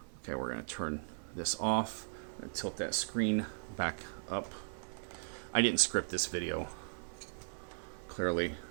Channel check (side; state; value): left; silent; digital silence